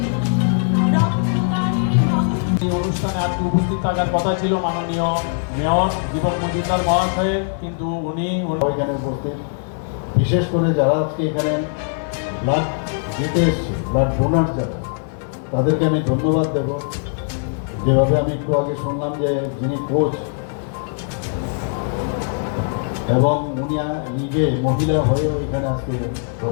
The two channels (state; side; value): silent; right; 65 dB below the other